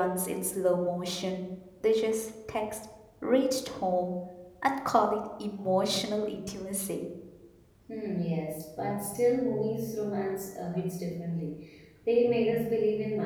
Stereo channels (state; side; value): identical; both; correlation 1.00